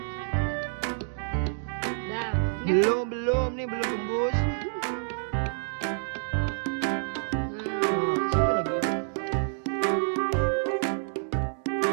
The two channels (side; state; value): left; silent; digital silence